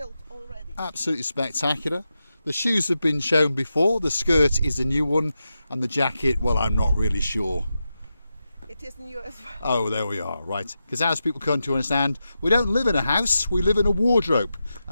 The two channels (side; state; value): both; inverted; correlation -0.89